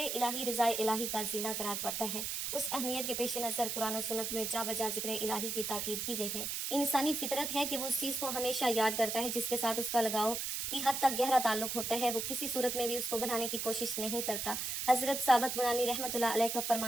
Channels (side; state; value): right; noise; hiss, 2 dB below the sound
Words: رضا الہی کا زینہ قرار پڑتا ہے۔ اس اہمیت کے پیش نظر قرآن و سنت میں جا بجا ذکر الہی کی تاکید کی گئی ہے۔ انسانی فطرت ہے کہ وہ اس چیز کو ہمیشہ یاد کرتا ہے جس کے ساتھ اس کا لگاؤ کی حد تک گہرا تعلق ہوتا ہے، وہ کسی صورت میں بھی اس کو بنانے کی کوشش نہیں کرتا۔ حضرت ثابت بنانی رحمۃ اللہ علیہ کا